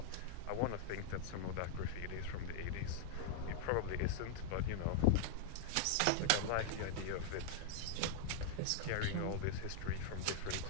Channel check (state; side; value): different; both; correlation 0.00